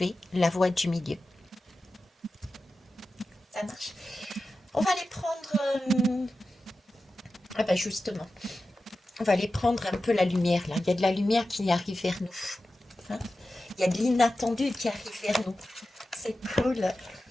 la voie du milieu. Ça marche. On va les prendre... Ah bah justement, on va aller prendre un peu la lumière là. Il y a de la lumière qui arrive vers nous. Hein, il y a de l'inattendu qui arrive vers nous. C'est cool.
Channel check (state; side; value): normal; both; correlation 0.93